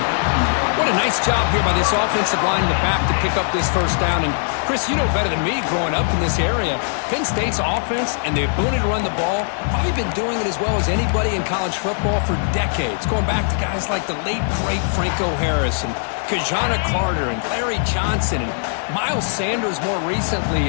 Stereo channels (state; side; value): silent; right; digital silence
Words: What a nice job here by this offensive line in the back to pick up this first down. And, Chris, you know better than me growing up in this area. Penn State's offense and the ability to run the ball, probably been doing it as well as anybody in college football for decades. Going back to guys like the late, great Franco Harris and Kajana Carter and Larry Johnson and Miles Sanders more recently.